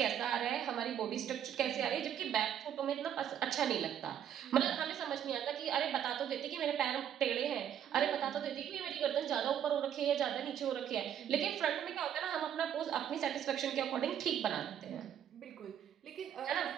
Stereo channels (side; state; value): left; quieter; 9.6 dB